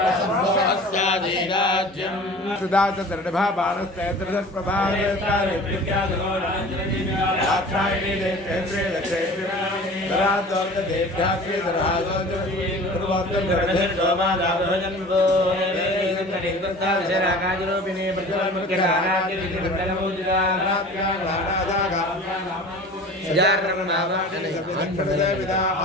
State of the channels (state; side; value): normal; both; correlation 0.41